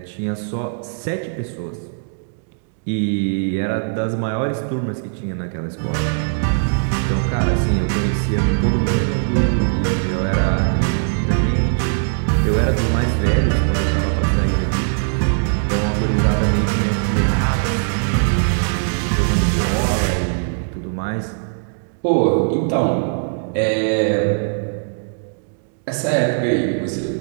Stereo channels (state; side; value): silent; left; digital silence